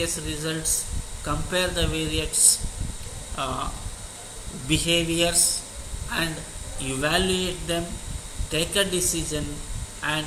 results, compare the various behaviors and evaluate them, take a decision, and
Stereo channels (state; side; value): identical; both; correlation 1.00